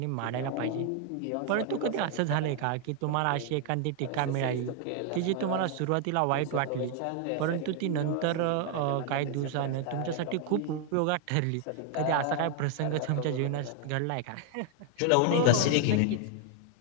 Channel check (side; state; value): both; different; correlation 0.00